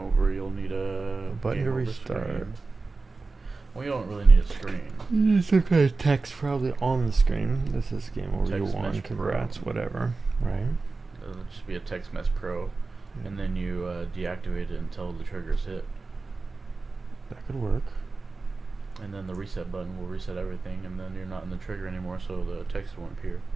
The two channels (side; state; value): left; quieter; 3.8 dB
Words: over, you'll need a button game to over restart. screen. Well, you don't really need a screen. Some kind of text probably on the screen. This is game over. You Text won. message pro. Congrats. Whatever. Right. It'll just be a text mess pro, Yeah. and then you deactivate it until the trigger's hit, That could work. and then the reset button will reset everything, and then you're not in the trigger anymore, so the text won't appear.